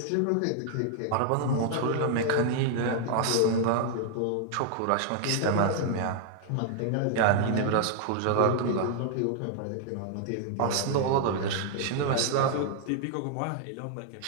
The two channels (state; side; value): different; both; correlation -0.01